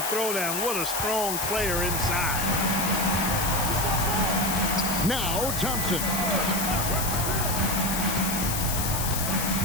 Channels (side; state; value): left; noise; hiss, 2 dB below the sound